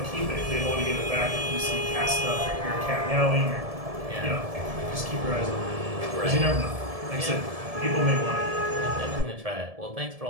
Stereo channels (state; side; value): late; left; 1.7 ms